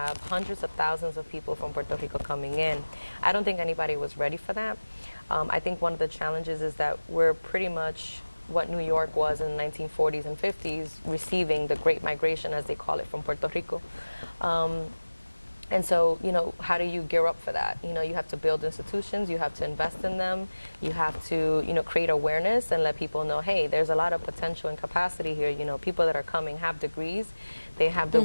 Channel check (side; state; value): both; inverted; correlation -1.00